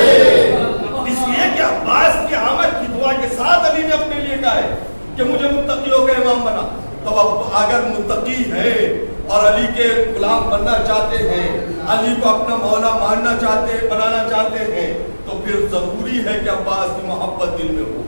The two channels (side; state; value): both; inverted; correlation -1.00